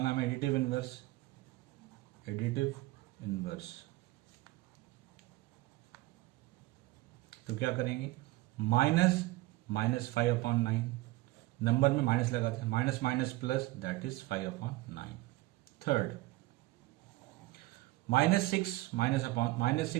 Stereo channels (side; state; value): left; quieter; 19.1 dB